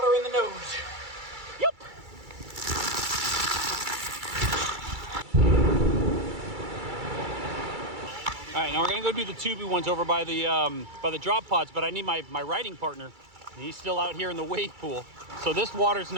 in the nose. Yep. All right, now we're gonna go do the tubey ones over by the drop pods, but I need my riding partner. He's still out here in the wave pool. So this water's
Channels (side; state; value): left; late; 2.3 ms